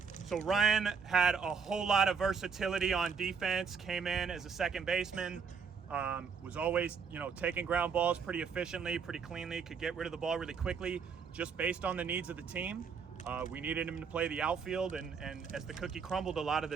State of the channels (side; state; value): left; quieter; 6.0 dB